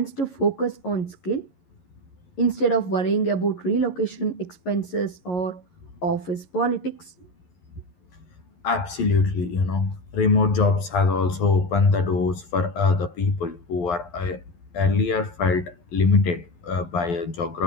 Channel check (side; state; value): right; late; 11 ms